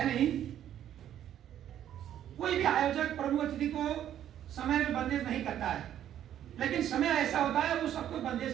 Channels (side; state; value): left; quieter; 10.9 dB